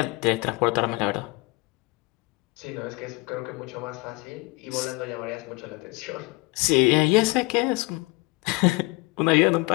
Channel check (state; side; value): quieter; right; 25.2 dB